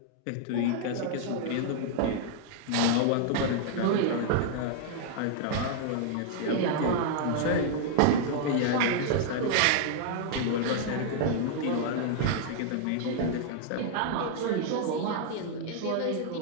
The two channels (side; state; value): both; different; correlation -0.01